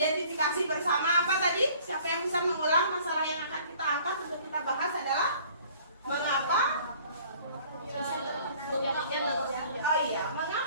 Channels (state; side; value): inverted; both; correlation -0.54